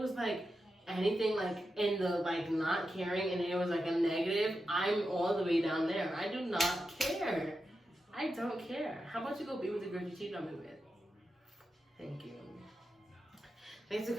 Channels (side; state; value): both; normal; correlation 0.89